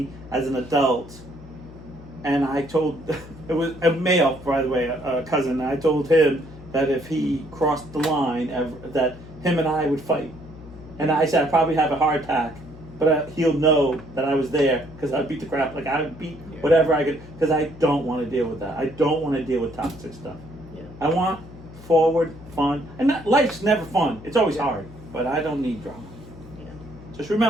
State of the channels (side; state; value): left; noise; hum, 17 dB below the sound